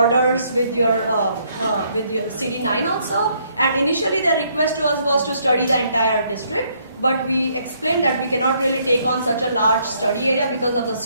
with your cb9 also. And initially, the request to us was to study the entire district. But we explained that we cannot really take on such a large study area because of the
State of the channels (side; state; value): both; inverted; correlation -0.69